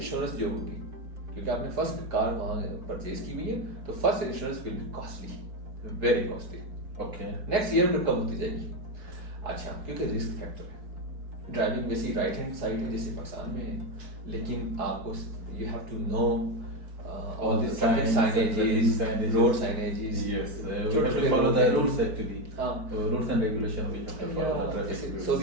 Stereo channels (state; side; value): late; left; 4.6 ms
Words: جو ہوگی, کیونکہ آپ نے فرسٹ کار وہاں پرچیز کی ہوئی ہے, تو first insurance will be costly, very costly. Okay, next year میں کم ہوتی جائے گی. اچھا, کیونکہ رسک فیکٹر ہے. ڈرائیونگ ویسی رائٹ ہینڈ سائڈ ہے جیسے پاکستان میں ہے, لیکن آپ کو you have to know all the signages, road signages. Yes, we have to follow the rules actually. Rules and regulation we have to follow the traffic rules.